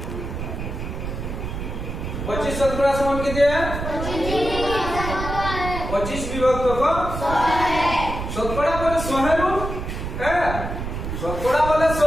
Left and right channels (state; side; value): noise; right; rumble, 5 dB below the sound